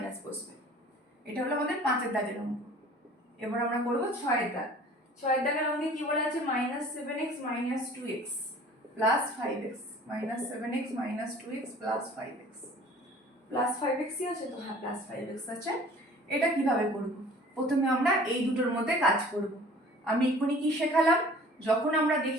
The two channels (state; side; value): normal; both; correlation 0.48